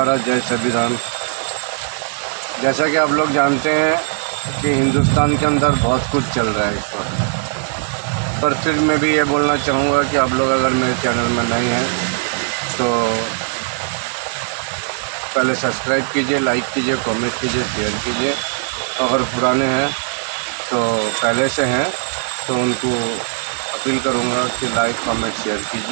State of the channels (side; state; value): left; silent; 67 dB below the other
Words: जय संविधान। जैसा कि आप लोग जानते हैं कि हिंदुस्तान के अंदर बहुत कुछ चल रहा है इस वक्त, पर फिर मैं भी ये बोलना चाहूँगा कि आप लोग अगर मेरे चैनल में नए हैं तो पहले सब्सक्राइब कीजिए, लाइक कीजिए, कमेंट कीजिए, शेयर कीजिए। अगर पुराने हैं तो पहले से हैं तो उनको अपील करूँगा कि लाइक कमेंट शेयर